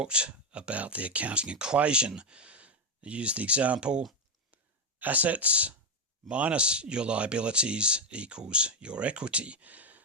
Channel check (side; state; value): both; normal; correlation 0.05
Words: about the accounting equation. I used the example assets minus your liabilities equals your equity.